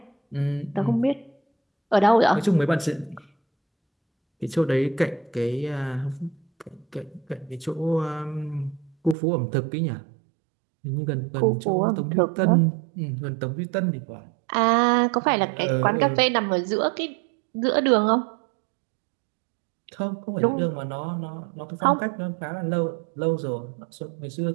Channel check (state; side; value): drops out; left; at 9.2 s